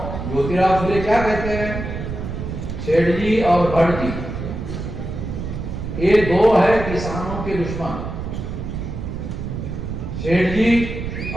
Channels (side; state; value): right; noise; rumble, 6 dB below the sound